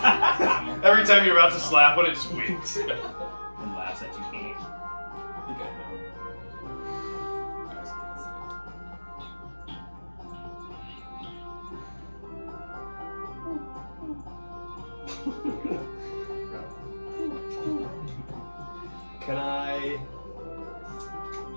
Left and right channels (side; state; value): both; inverted; correlation -1.00